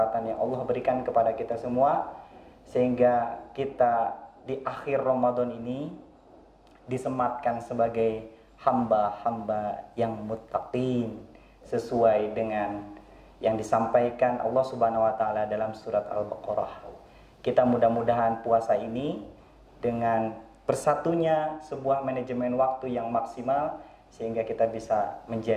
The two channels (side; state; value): both; identical; correlation 1.00